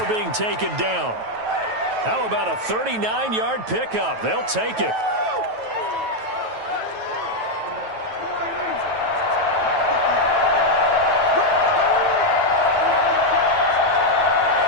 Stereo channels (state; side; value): late; left; 9.2 ms